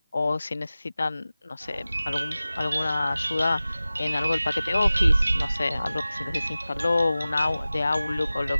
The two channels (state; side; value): inverted; both; correlation -0.96